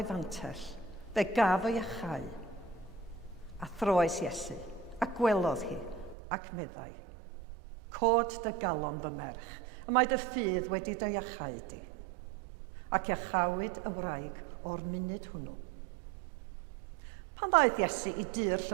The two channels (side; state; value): left; drops out; at 6.2 s